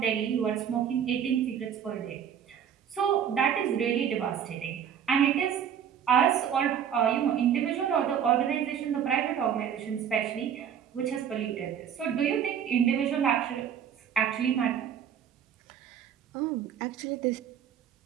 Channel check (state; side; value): quieter; left; 8.6 dB